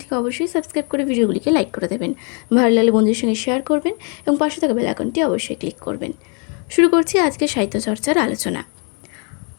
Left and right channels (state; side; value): quieter; right; 37.8 dB